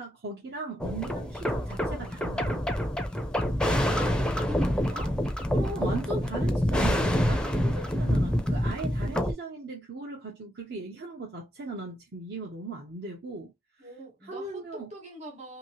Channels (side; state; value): both; normal; correlation 0.83